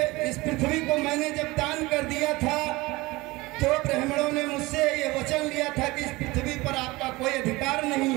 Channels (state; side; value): quieter; left; 21.5 dB